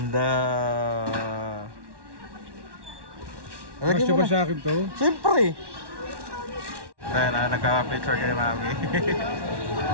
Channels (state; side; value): late; left; 1.1 ms